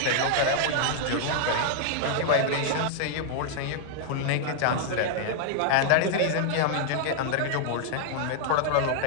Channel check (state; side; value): different; both; correlation 0.00